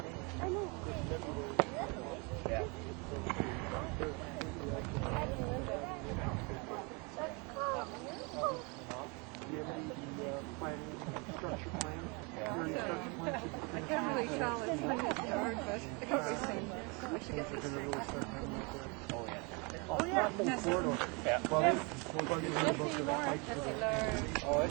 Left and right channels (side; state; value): left; quieter; 30.8 dB